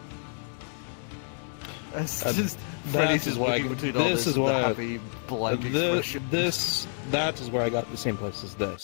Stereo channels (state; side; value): silent; right; digital silence